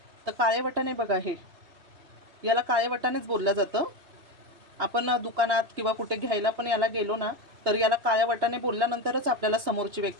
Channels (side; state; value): left; late; 2.9 ms